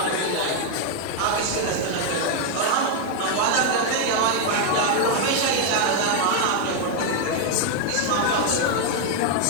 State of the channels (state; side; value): different; both; correlation 0.01